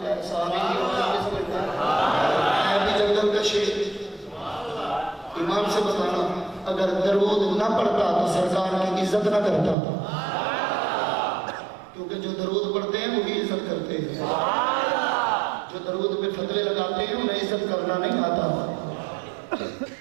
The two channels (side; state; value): left; drops out; at 9.8 s